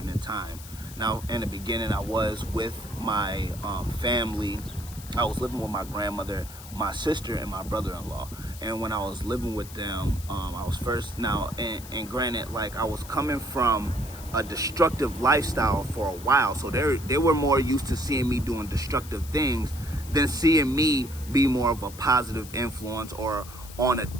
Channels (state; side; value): noise; left; hiss, 16 dB below the sound